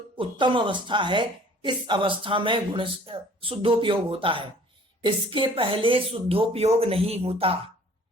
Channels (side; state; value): both; normal; correlation 0.52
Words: उत्तम अवस्था है, इस अवस्था में गुण शुद्धोपयोग होता है, इसके पहले शुद्धोपयोग नहीं होता।